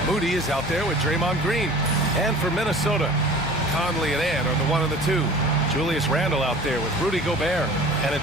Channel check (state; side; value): normal; both; correlation 0.43